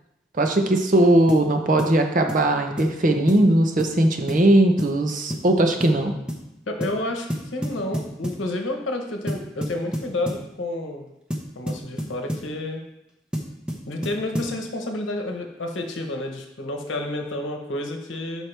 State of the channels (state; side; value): normal; both; correlation 0.66